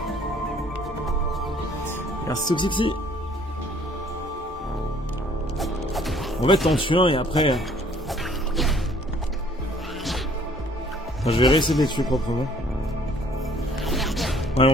Merci Toxixi. En fait, t'en tues un et après... Enfin, je vais réessayer de les tuer proprement. Ouais,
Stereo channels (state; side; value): normal; both; correlation 0.58